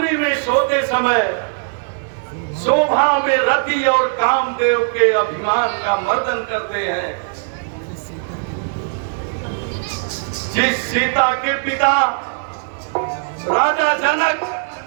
में सोते समय शोभा में रति और कामदेव के अभिमान का मर्दन करते हैं, जिस सीता के पिता राजा जनक,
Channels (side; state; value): left; silent; 58 dB below the other